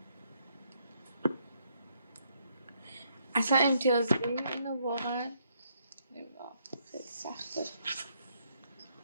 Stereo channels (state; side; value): inverted; both; correlation -0.73